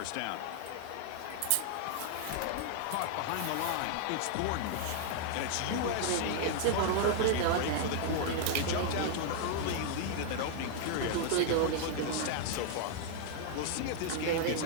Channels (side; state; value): both; different; correlation 0.00